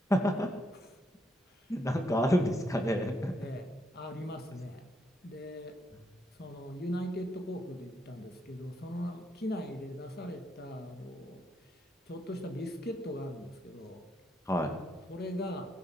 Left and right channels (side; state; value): both; normal; correlation 0.77